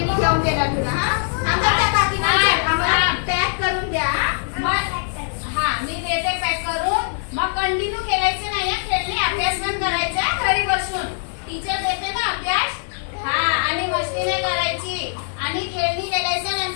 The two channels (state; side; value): silent; right; digital silence